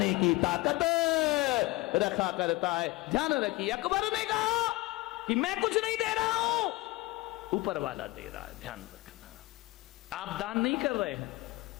की ताकत रखा करता है। ध्यान रखिए, अकबर ने कहा कि मैं कुछ नहीं दे रहा हूं, ऊपर वाला दे रहा है। ध्यान रखना, आप दान नहीं कर रहे हैं।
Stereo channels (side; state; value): right; quieter; 20.9 dB